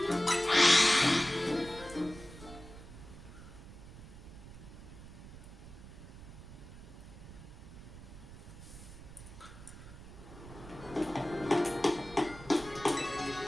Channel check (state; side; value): noise; right; rumble, 15 dB below the sound